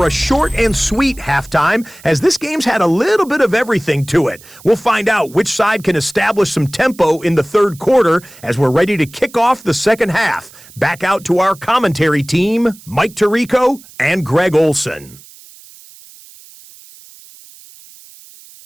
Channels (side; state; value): right; noise; hiss, 22 dB below the sound